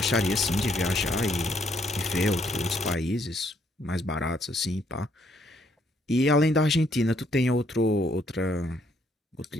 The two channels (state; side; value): normal; both; correlation 0.70